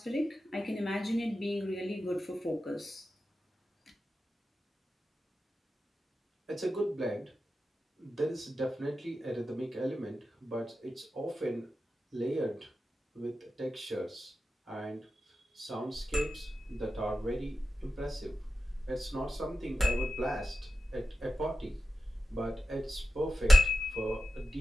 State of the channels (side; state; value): both; normal; correlation 0.92